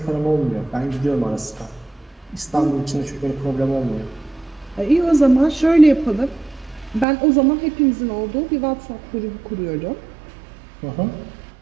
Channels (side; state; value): left; drops out; at 7.1 s